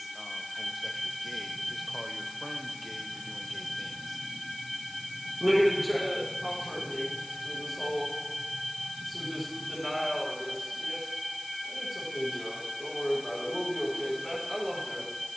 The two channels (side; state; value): left; noise; hiss, 15 dB below the sound